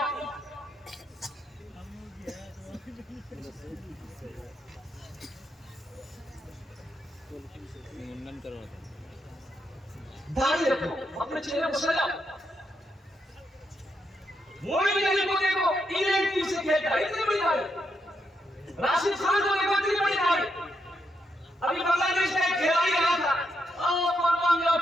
मुंडन करो, दाढ़ी रखो, अपने चेहरे को सजाओ। मोइन अली को देखो, इंग्लैंड टीम से खेलता है, इतनी बड़ी दाढ़ी। राशिद खान को देखो, इतनी बड़ी दाढ़ी। अभी बांग्लादेश का एक खिलाड़ी रहा था,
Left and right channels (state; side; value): normal; both; correlation 0.81